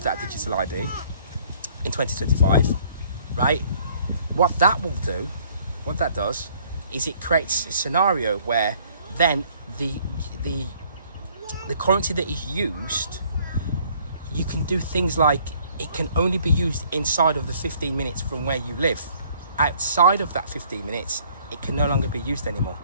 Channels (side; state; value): both; inverted; correlation -0.59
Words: ID in 2025, right? What that does is it creates a scenario where then the currency that is used, you can do things like it can only be used inside of the 15 minutes from where you live. Outside of that 15 minutes, it can no longer be used anymore.